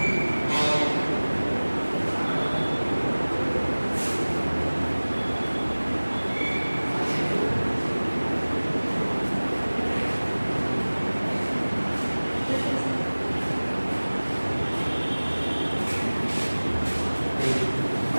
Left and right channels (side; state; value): both; inverted; correlation -1.00